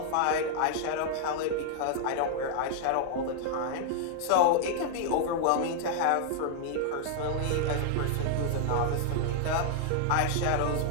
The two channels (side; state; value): both; different; correlation -0.01